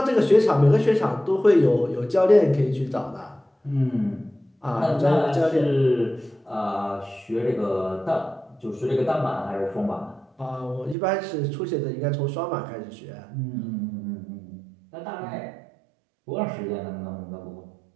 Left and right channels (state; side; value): drops out; left; at 11.0 s